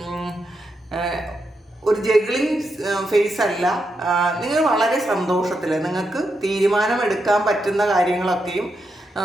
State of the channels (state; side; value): normal; both; correlation 0.84